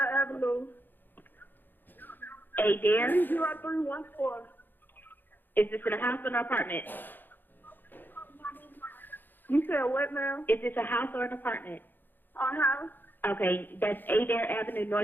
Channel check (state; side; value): late; right; 0.092 ms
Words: Avenue. Adair. 30314. Is this in a house or an apartment? You said what now? Is this a house or an apartment? Our house? Okay, that's Adair Avenue